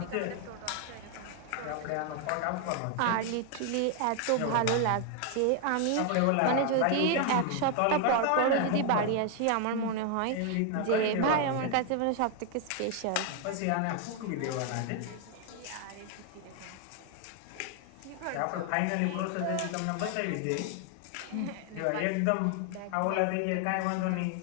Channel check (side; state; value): both; different; correlation 0.01